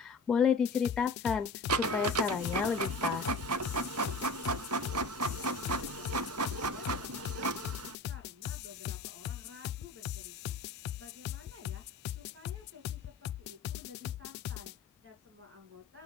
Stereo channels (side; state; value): right; quieter; 3.2 dB